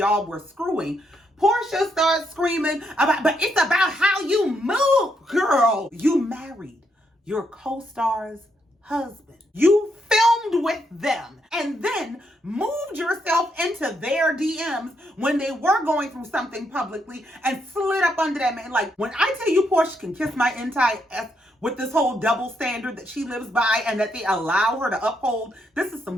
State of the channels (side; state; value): both; normal; correlation 0.77